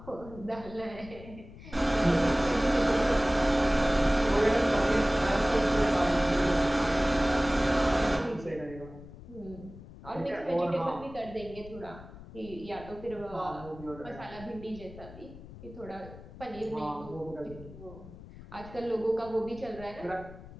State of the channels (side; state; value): left; noise; rumble, 17 dB below the sound